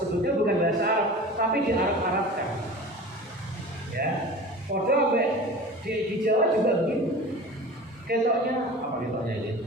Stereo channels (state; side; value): normal; both; correlation 0.37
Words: bukan bahasa Arab tapi di Arab-Arabkan. Ya, padahal di Jawa juga begitu. Ketoknya apa ketoknya ini?